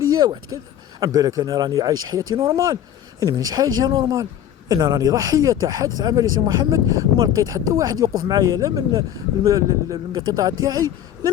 واحد كذا. عم بالك انا راني عايش حياتي نورمال، انا مانيش حاجه نورمال. انا راني ضحيه تاع حادث عمل يا سي محمد، وما لقيت حتى واحد يوقف معايا، لا من القطاع تاعي لا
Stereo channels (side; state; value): right; quieter; 10.6 dB